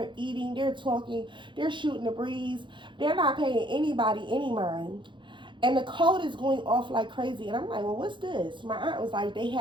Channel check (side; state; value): left; late; 0.23 ms